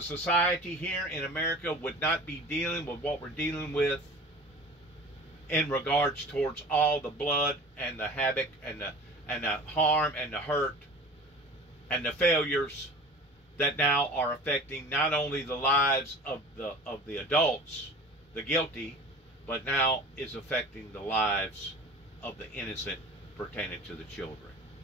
society here in America would not be dealing with what we're dealing with in regards towards all the blood and the havoc and the harm and the hurt and the failures that now are affecting not only the lives of the adults, the guilty, but now is affecting the lives of the innocent pertaining to the children.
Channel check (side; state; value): both; normal; correlation 0.40